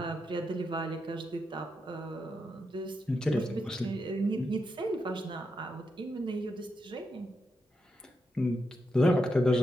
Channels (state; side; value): normal; both; correlation 0.85